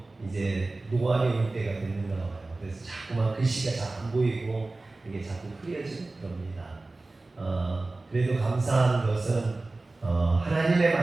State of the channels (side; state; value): left; quieter; 3.2 dB